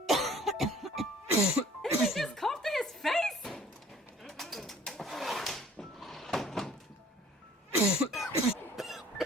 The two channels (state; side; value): normal; both; correlation 0.52